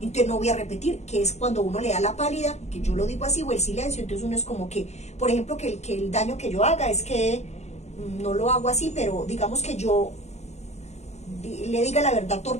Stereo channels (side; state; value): right; late; 0.32 ms